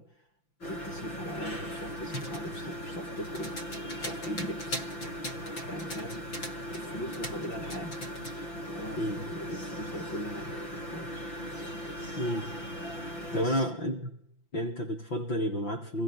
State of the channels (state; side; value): late; right; 5.9 ms